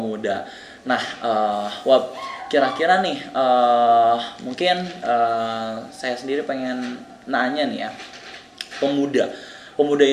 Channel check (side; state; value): both; identical; correlation 1.00